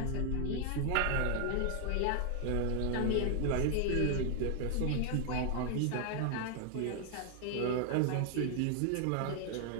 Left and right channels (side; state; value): both; different; correlation 0.00